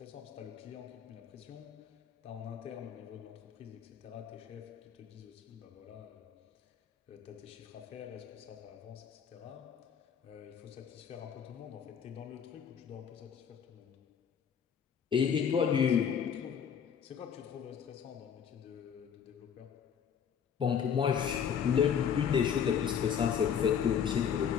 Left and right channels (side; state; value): right; quieter; 7.8 dB